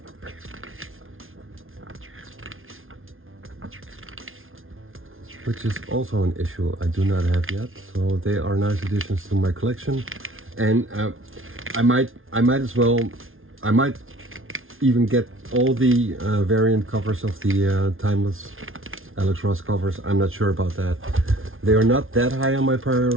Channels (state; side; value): late; left; 0.60 ms